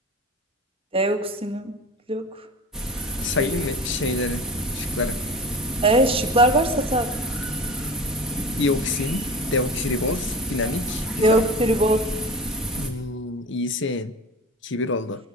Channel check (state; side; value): normal; both; correlation 0.33